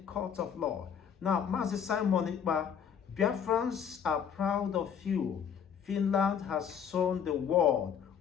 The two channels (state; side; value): quieter; right; 7.8 dB